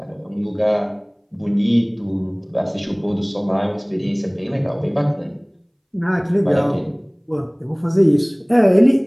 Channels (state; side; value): identical; both; correlation 1.00